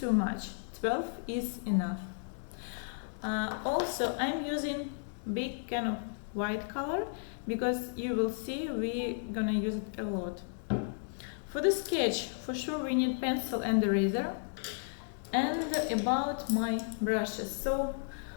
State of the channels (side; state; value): right; silent; digital silence